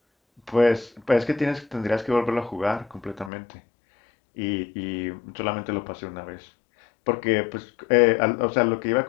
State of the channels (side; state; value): right; drops out; at 3.3 s